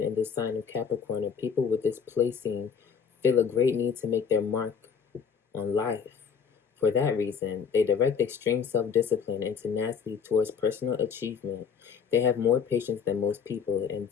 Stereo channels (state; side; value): quieter; right; 6.6 dB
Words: the sign of Capricorn, and people with this placing feel a great need to make their mark on life. For that reason, they direct extreme self-discipline and tenacity towards personal achievement. They have more patience than most people, and